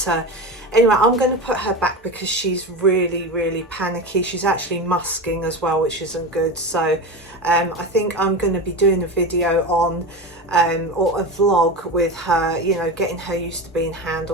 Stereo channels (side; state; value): both; normal; correlation 0.23